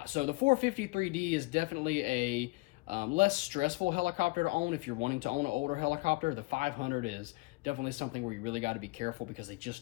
so the 450 3D is definitely a less stressful helicopter to own if you're wanting to own an older helicopter. The 500 is definitely something where you really got to be careful because they just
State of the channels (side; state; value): right; quieter; 24.5 dB